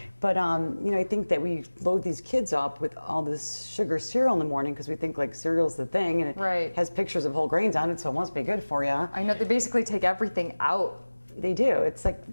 But, you know, I think that we load these kids up with all this sugar cereal in the morning because we think, like, cereal's the thing. And it has pictures of whole grains on it, so it must be good for you. I know. They basically take everything out. They do. It's like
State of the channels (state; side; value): inverted; both; correlation -1.00